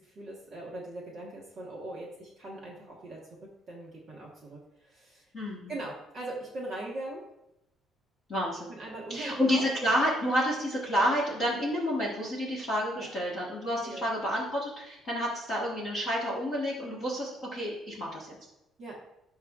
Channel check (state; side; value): normal; both; correlation 0.70